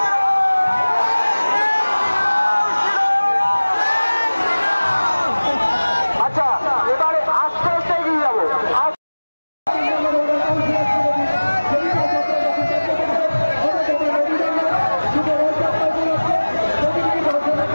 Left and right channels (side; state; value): both; inverted; correlation -1.00